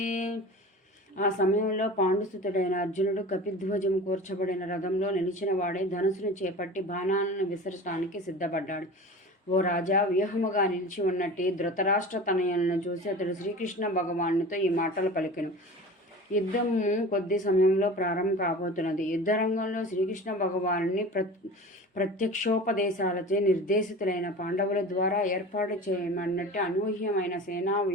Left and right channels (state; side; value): normal; both; correlation 0.36